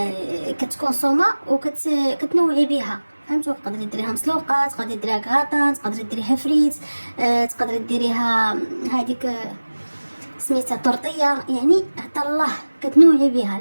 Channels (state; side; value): inverted; both; correlation -1.00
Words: كتكون صومه وكتنوعي بها. فهمتوا؟ تقدري ديريها مسلوقه، تقدري ديريها كاطا، تقدري ديريها فريت، تقدري ديريها هذيك سميتها طرطيه. يعني حتى الله كتنوعي بها.